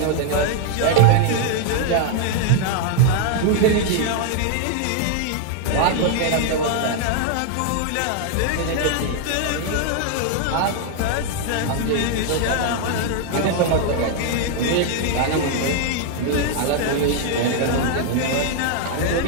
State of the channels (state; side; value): different; both; correlation 0.00